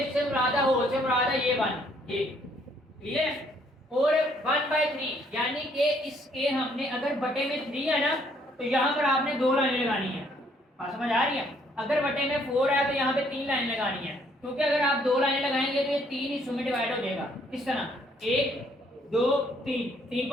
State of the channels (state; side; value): normal; both; correlation 0.65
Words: इससे मुरादा हो से मुरादा ये 1 ये क्लियर, और 1/3 यानी कि इसके हमने अगर बटे में 3 है ना तो यहाँ पर आपने 2 लाइनें लगानी है, बात समझ आ रही है, अगर बटे में 4 है तो यहाँ पे 3 लाइन लगानी है, क्योंकि अगर आप 2 लाइनें लगाएंगे तो ये 3 हिस्सों में डिवाइड हो जाएगा, इस तरह 1 2 3